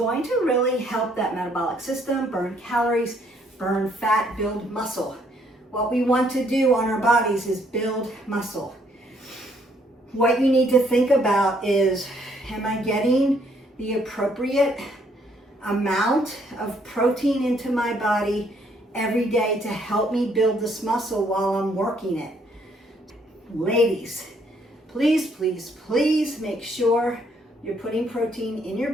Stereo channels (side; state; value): both; normal; correlation 0.68